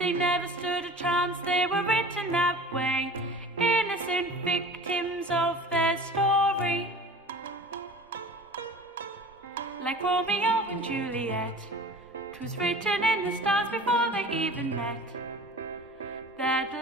never stood a chance, they were written that way, innocent victims of their story. Like Romeo and Juliet, 'twas written in the stars before they even met, that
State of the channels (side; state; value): both; normal; correlation 0.40